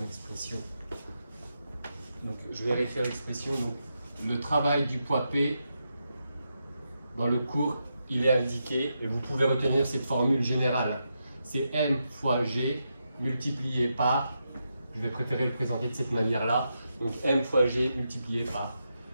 expression, je vais réécrire l'expression, le travail du poids P dans le cours il est indiqué, et vous pouvez retenir cette formule générale, c'est m fois g multiplié par, je vais préférer le présenter de cette manière-là, donc m fois g multiplié par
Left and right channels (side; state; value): both; inverted; correlation -0.85